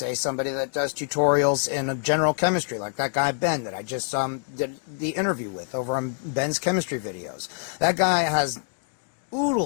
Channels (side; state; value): right; silent; digital silence